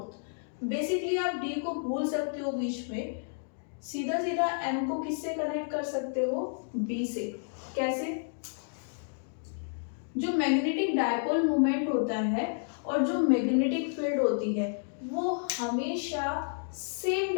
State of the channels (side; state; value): right; silent; digital silence